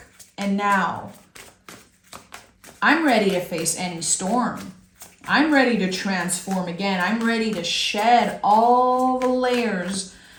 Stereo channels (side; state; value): both; identical; correlation 1.00